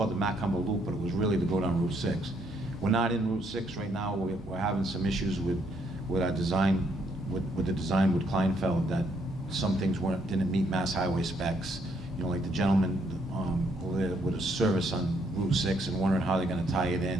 the Macumber Loop, but it was really to go down Route 6. We're not in Route 6 right now. We're having some issues with our design, with the design with Kleinfeld, that some things didn't meet Mass Highway specs. Like the gentleman with a service on Route 6 and wondering how they're going to tie it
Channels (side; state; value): both; normal; correlation 0.71